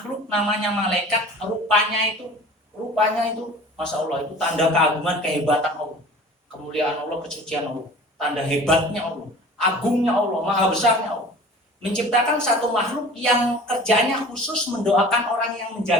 namanya malaikat. Rupanya itu, Masya Allah, itu tanda keagungan, kehebatan Allah, kemuliaan Allah, kesucian Allah, tanda hebatnya Allah, agungnya Allah, maha besarnya Allah. Menciptakan satu makhluk yang kerjanya khusus mendoakan orang yang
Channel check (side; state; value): both; normal; correlation 0.42